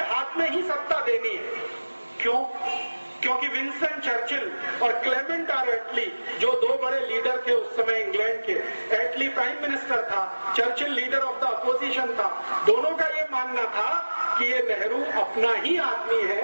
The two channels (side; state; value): both; inverted; correlation -1.00